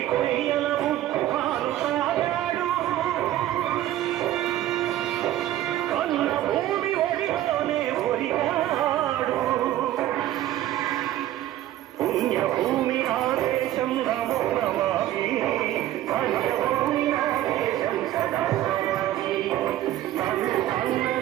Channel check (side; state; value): left; quieter; 13.5 dB